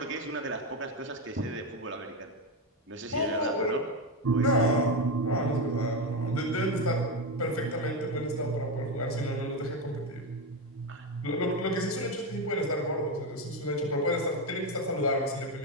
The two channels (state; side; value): normal; both; correlation 0.11